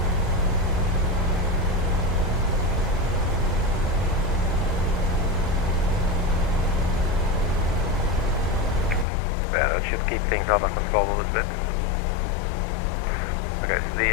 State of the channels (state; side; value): drops out; right; at 9.1 s